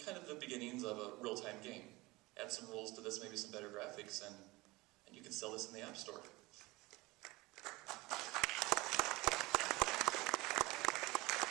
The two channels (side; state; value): left; quieter; 21.8 dB